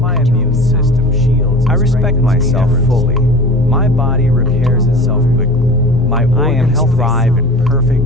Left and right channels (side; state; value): both; normal; correlation 0.37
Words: immune system shields. I respect myself fully. My body repairs itself quickly. My organs thrive in